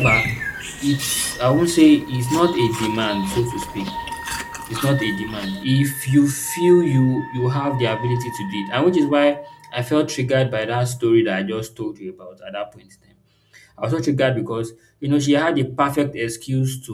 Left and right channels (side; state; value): both; identical; correlation 1.00